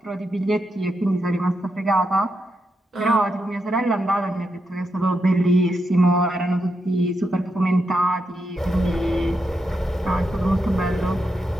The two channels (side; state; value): both; normal; correlation 0.84